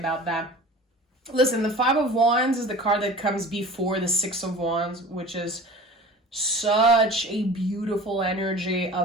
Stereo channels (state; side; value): normal; both; correlation 0.40